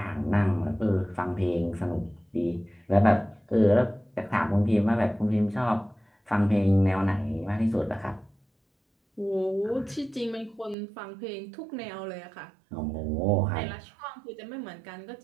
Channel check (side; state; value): left; drops out; at 10.8 s